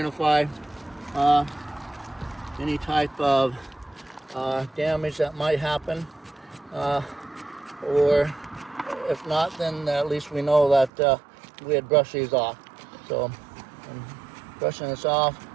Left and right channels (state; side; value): drops out; left; at 10.9 s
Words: any type of damage that might happen, or if not, then at least we know that we had brushed these off. So I'm brushing this off.